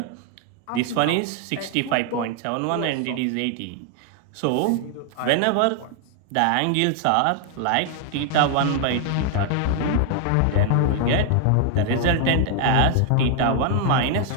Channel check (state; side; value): different; both; correlation 0.00